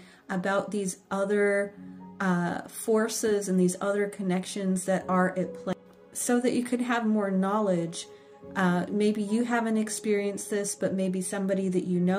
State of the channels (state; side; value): identical; both; correlation 1.00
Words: about these other forces and these other connections that are at play, so that you could have more knowledge. Maybe you haven't experienced this, but maybe somebody that you